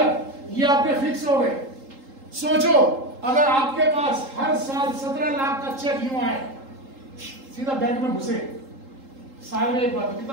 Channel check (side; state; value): left; late; 3.8 ms